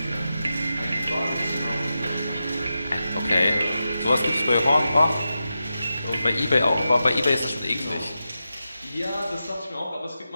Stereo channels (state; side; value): inverted; both; correlation -0.90